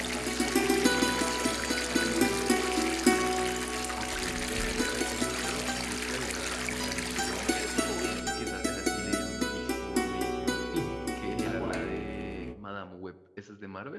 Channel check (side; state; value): both; identical; correlation 1.00